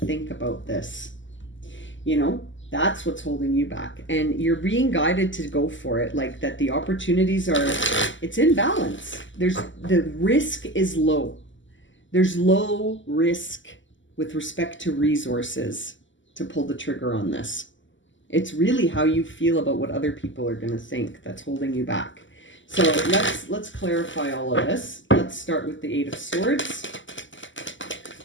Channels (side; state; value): right; late; 0.55 ms